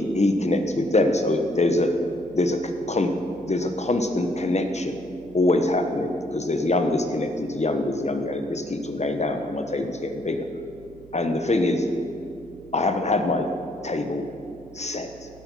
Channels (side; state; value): right; noise; hum, 22 dB below the sound